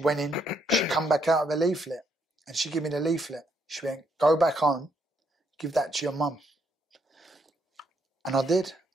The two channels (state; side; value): normal; both; correlation 0.74